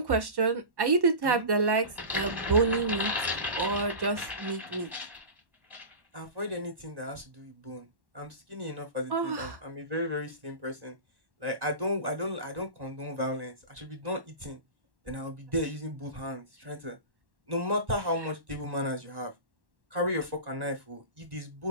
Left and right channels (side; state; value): left; late; 1.1 ms